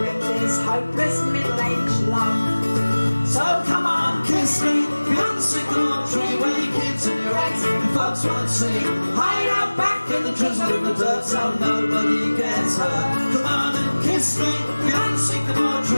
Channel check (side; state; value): both; inverted; correlation -1.00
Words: it, this hopeless middle-aged love. So come on, kiss me beyond the sycamore tree, where your kids and your ex and folks won't see. Hide out back in the drizzle and the dirt so nobody gets hurt. Come on and kiss me beyond the sycamore